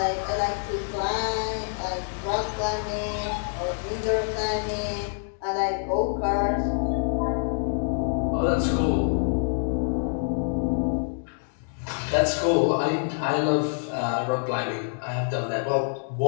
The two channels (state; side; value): silent; right; 61 dB below the other